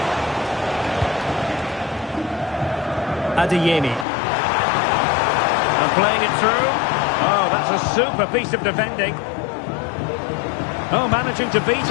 Adeyemi. And playing it through. Oh, that's a super piece of defending. Oh, managing to beat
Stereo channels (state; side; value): drops out; right; at 4.0 s